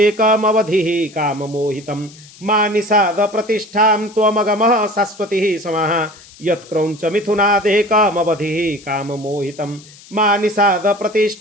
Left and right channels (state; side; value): noise; left; hiss, 22 dB below the sound